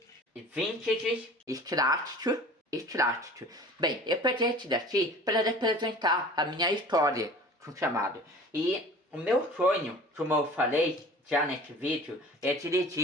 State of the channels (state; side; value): normal; both; correlation 0.43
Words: vintage, extrato. Bem, eu peguei esse daqui para representar a minha história com chamado. E o meu sonho, como eu falei já nesse vídeo, é